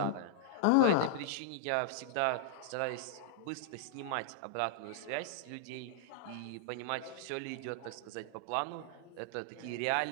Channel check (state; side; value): different; both; correlation -0.01